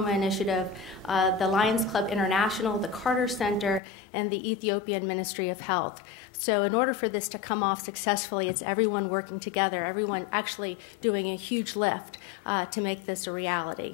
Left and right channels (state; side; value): drops out; right; at 3.8 s